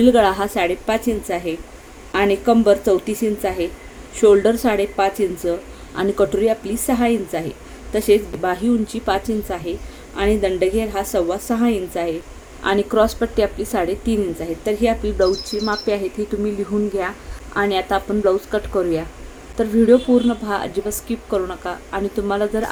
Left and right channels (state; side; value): identical; both; correlation 1.00